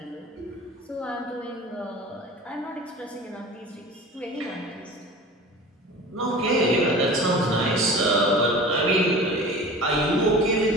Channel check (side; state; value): both; normal; correlation 0.38